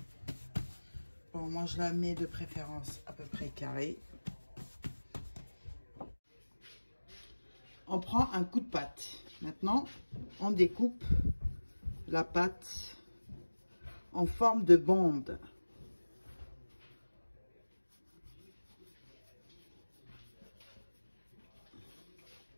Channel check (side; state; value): both; inverted; correlation -1.00